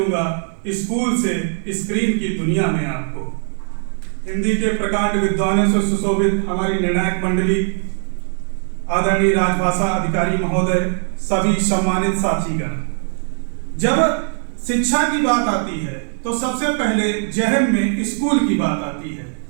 स्कूल से स्क्रीन की दुनिया में आपको। हिंदी के प्रकांड विद्वानों से सुशोभित हमारी निर्णायक मंडली, आदरणीय राजभाषा अधिकारी महोदय, सभी सम्मानित साथीगण, जब शिक्षा की बात आती है तो सबसे पहले जहन में स्कूल की बात आती है,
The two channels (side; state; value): left; silent; digital silence